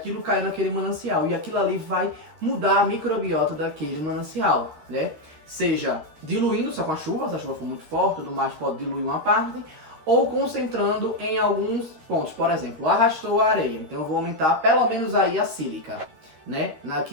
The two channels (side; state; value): left; late; 13 ms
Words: caiu naquele manancial. E aquilo ali vai mudar a microbiota daquele manancial, né? Seja diluindo só com a chuva, se a chuva for muito forte, tudo mais pode diluir uma parte, ou concentrando em alguns pontos. Por exemplo, arrastou a areia, então eu vou aumentar pelo menos aí a sílica, né,